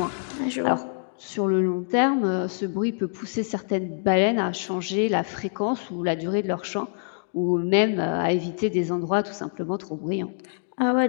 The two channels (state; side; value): silent; right; digital silence